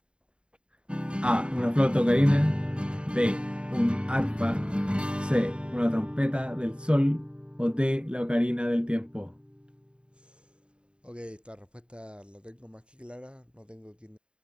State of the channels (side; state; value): left; late; 0.053 ms